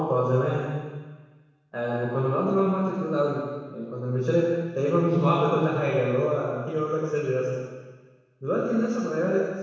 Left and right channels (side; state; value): both; identical; correlation 1.00